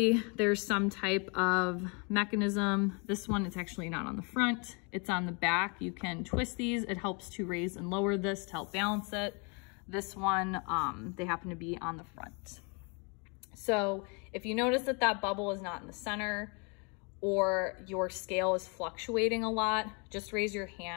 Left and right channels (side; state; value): right; quieter; 33.6 dB